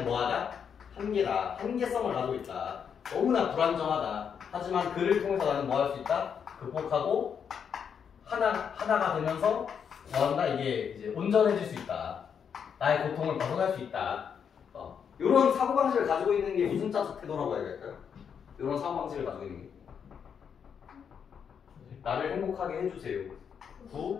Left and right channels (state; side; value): quieter; right; 7.3 dB